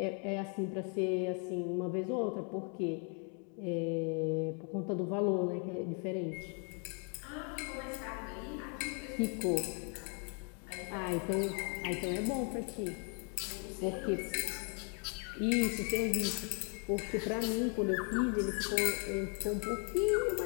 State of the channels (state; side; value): quieter; right; 39.4 dB